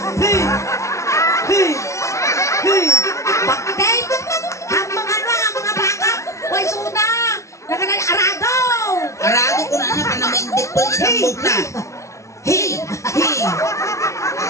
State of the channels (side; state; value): right; late; 0.14 ms